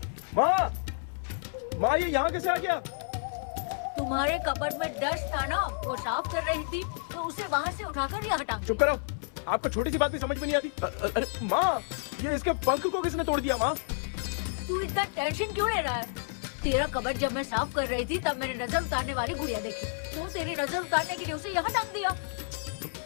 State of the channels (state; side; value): silent; right; 58 dB below the other